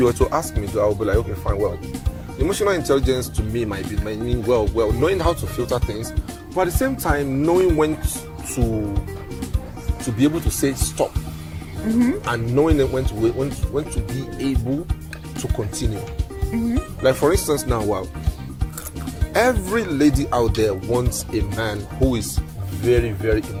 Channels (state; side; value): identical; both; correlation 1.00